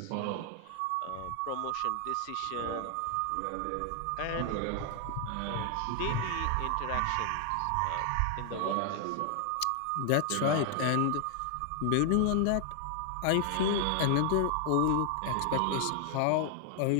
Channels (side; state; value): both; different; correlation 0.00